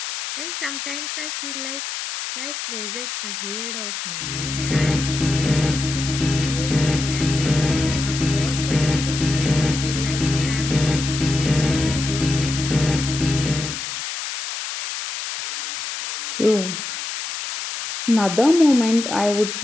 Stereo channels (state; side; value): noise; left; hiss, 6 dB below the sound